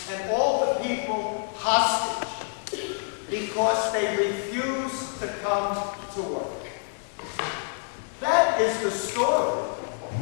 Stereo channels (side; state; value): right; silent; 60 dB below the other